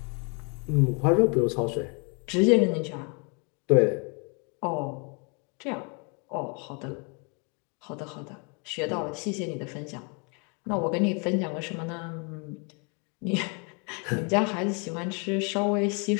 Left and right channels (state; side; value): quieter; right; 35.1 dB